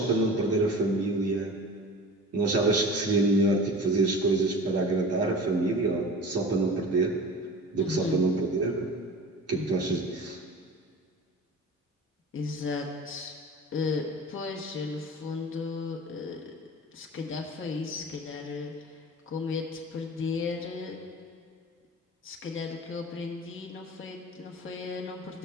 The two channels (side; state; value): both; normal; correlation 0.37